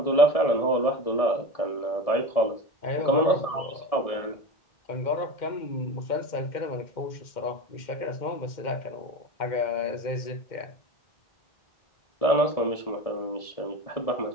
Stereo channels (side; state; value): right; late; 1.7 ms